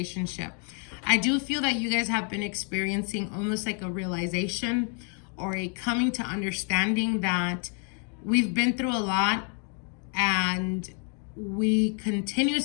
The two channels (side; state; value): right; quieter; 39.7 dB